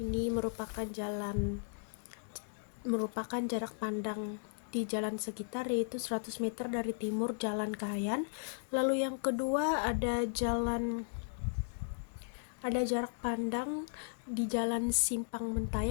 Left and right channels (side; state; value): right; silent; digital silence